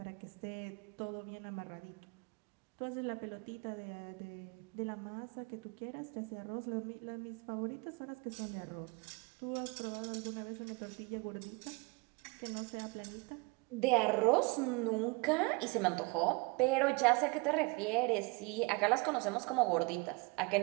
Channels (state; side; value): quieter; left; 27.7 dB